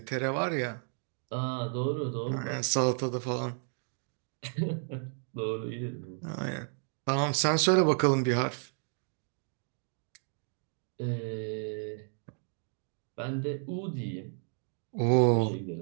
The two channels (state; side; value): silent; left; 56 dB below the other